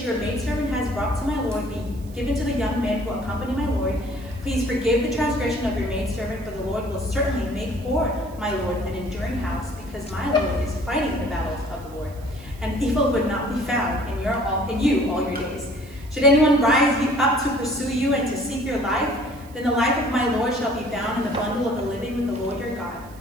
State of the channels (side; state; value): right; noise; hiss, 24 dB below the sound